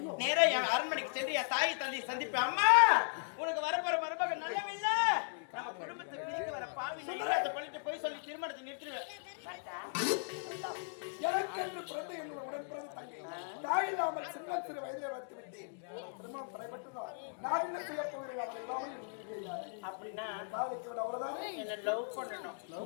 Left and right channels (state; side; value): silent; right; digital silence